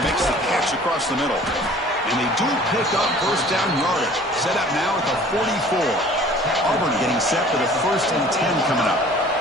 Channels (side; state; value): both; normal; correlation 0.49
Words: makes the catch across the middle. And they do pick up first down yardage. Set up now at the 44. Auburn getting set for the 1st and 10 coming up.